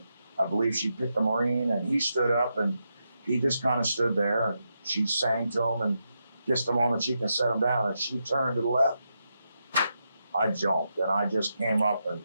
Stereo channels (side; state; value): both; inverted; correlation -0.85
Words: I believe she picked a Marine and he stood up and he just kind of stood there and she sang to him and kissed him on the cheek and set him down and she turned to the left. I jumped and I just came up and